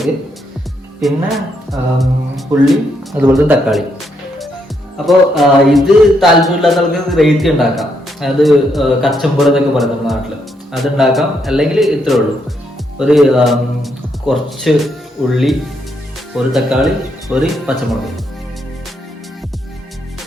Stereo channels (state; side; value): normal; both; correlation 0.77